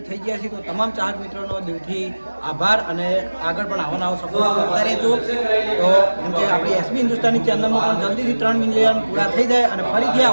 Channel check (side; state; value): both; inverted; correlation -1.00